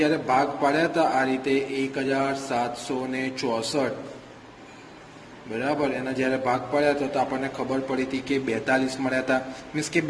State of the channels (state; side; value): identical; both; correlation 1.00